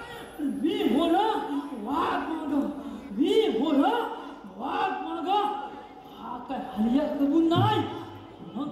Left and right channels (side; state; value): both; identical; correlation 1.00